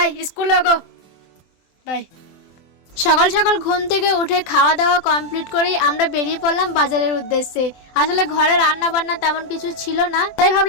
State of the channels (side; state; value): right; late; 24 ms